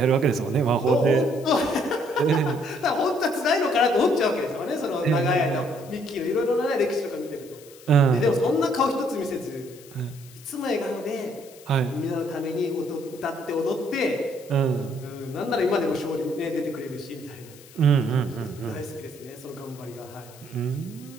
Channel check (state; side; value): noise; left; hiss, 22 dB below the sound